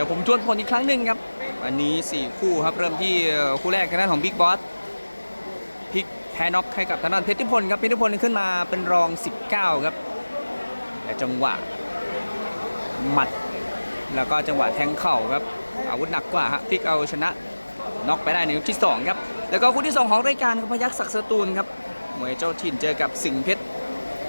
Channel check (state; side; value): inverted; both; correlation -1.00